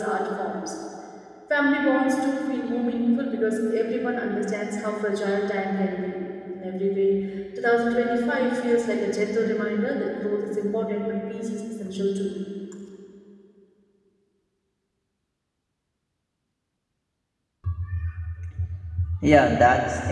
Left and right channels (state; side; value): identical; both; correlation 1.00